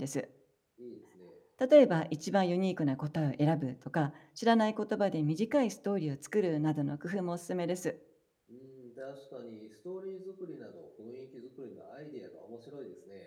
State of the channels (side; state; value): both; identical; correlation 1.00